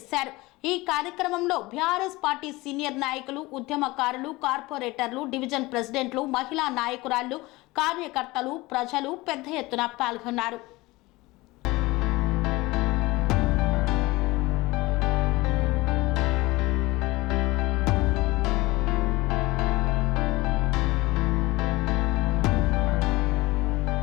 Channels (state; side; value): quieter; right; 21.1 dB